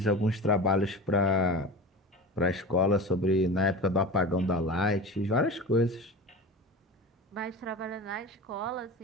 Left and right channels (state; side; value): normal; both; correlation 0.32